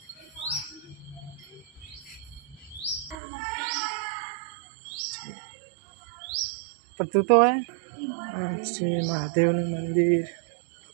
પણ તું તો હે આ છે મહાદેવનું મંદિર,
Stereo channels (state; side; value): drops out; left; at 3.2 s